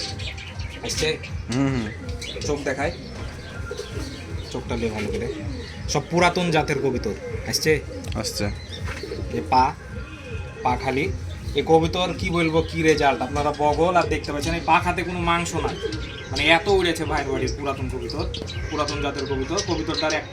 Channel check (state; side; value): identical; both; correlation 1.00